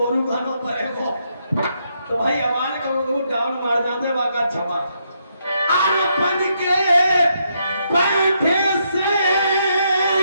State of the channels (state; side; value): inverted; both; correlation -0.77